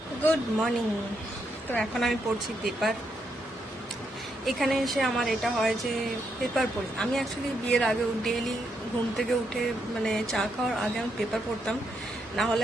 Good morning. তো এখন আমি পড়ছি পেপার। এখানে এসে আমার এটা হয় যে পেপার পড়ি। আমি অ্যাকচুয়ালি বিয়ের আগেও ডেইলি ঘুম থেকে উঠে মানে চা খাওয়ার আগে আমি পেপার পড়তাম, না হলে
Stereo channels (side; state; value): both; normal; correlation 0.79